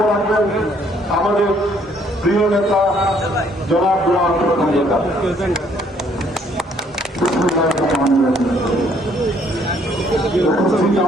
রাখবেন আমাদের প্রিয় নেতা জনাব গোলাম প্রধান নেতা। উপস্থিত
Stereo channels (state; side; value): normal; both; correlation 0.65